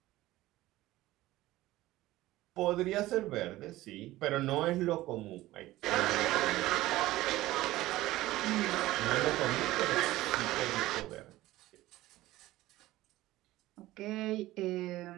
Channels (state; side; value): quieter; left; 16.9 dB